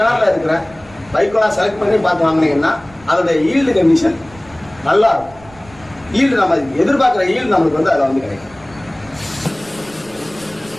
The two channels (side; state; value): right; noise; rumble, 24 dB below the sound